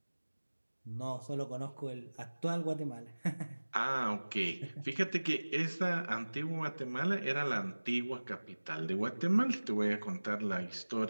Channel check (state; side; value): inverted; both; correlation -1.00